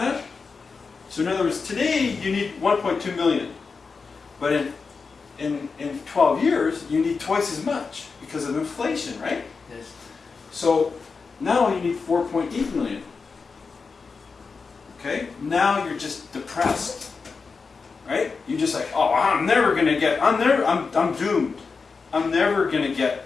So in other words, today you need 1.2 million. But in in 12 years, you need twice as much because of inflation, right? Yes. So now you need 4.8 million. Okay? Now you're just depressed. Right? You're just like, oh, I'm doomed. I'm never gonna get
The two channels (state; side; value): quieter; right; 4.8 dB